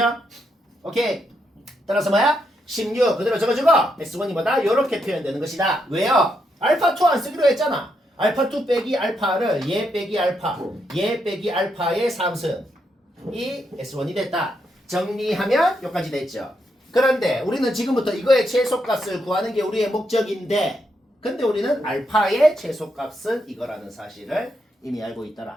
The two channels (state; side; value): normal; both; correlation 0.80